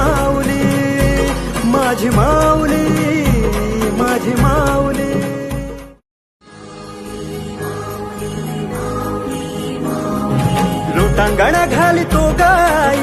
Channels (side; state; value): both; identical; correlation 1.00